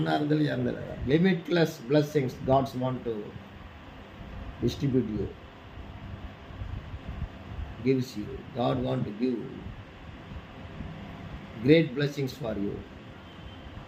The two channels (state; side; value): identical; both; correlation 1.00